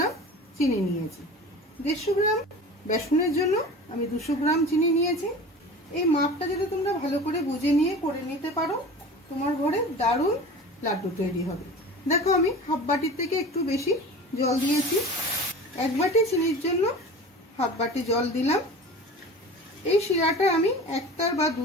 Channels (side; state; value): both; normal; correlation 0.36